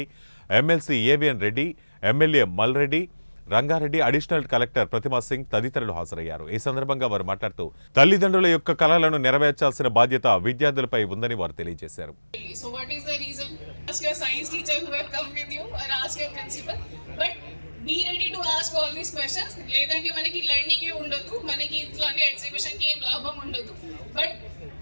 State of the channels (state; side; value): inverted; both; correlation -1.00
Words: MLC AVN Reddy, MLA Malreddy, Rangareddy additional collector Pratima Singh తదితరులు హాజరయ్యారు. ఈ సందర్భంగా వారు మాట్లాడుతూ తల్లిదండ్రుల యొక్క కలలను నెరవేర్చాల్సిన బాధ్యత విద్యార్థులపై ఉందని వారు తెలియజేశారు. Be ready to ask all these questions. లేదంటే మనకి లెర్నింగ్ ఉండదు, మనకి ఇట్లాంటి ఎగ్జిబిషన్ కి ఏం లాభం ఉండదు. బట్